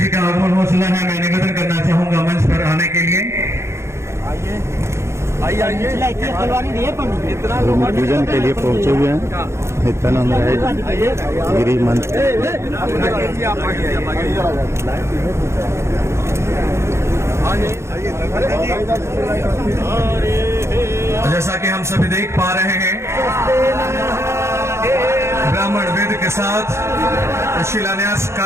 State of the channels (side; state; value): left; late; 0.13 ms